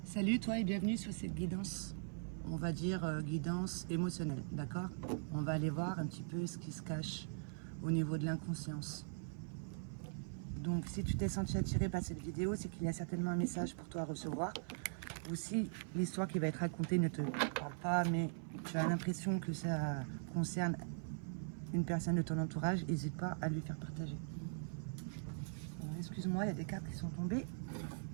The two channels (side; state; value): left; silent; 50 dB below the other